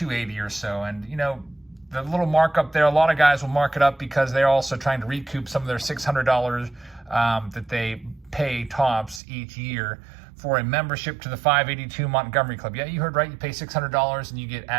or so. And, you know, the little markup there, a lot of guys will mark it up because they're also trying to recoup some of their $600 that they pay Topps each year for a membership to the 582 Montgomery Club. Yeah, you heard right. You pay $600 and you get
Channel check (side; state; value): left; drops out; at 9.2 s